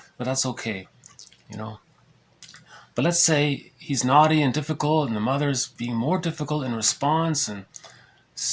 but that's okay, But let's say he's naughty and difficult, and the mother's being more difficult in response, and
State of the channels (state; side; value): identical; both; correlation 1.00